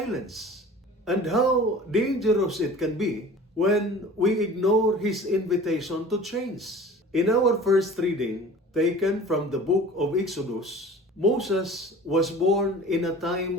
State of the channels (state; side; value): normal; both; correlation 0.42